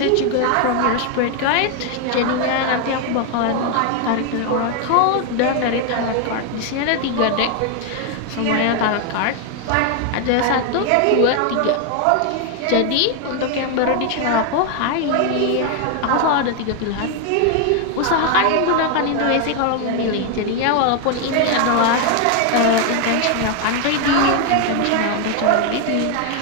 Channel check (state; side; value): different; both; correlation 0.01